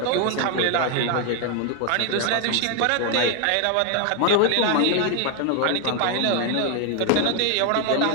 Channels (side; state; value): both; different; correlation 0.01